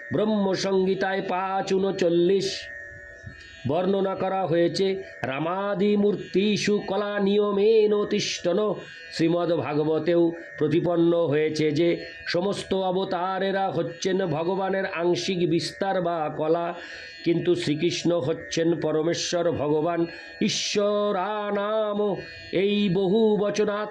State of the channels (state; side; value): identical; both; correlation 1.00